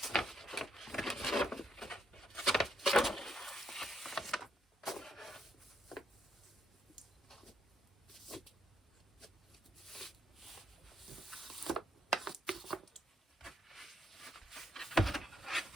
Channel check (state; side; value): normal; both; correlation 0.76